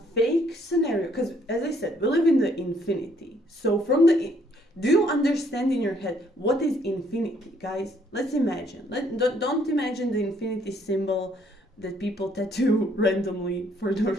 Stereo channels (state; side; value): normal; both; correlation 0.66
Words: fake scenario, because as I said, we live in the infinity. So do you understand in your head what is infinity, guys? Let's imagine. Don't imagine the infinity symbol that people tattoo randomly for no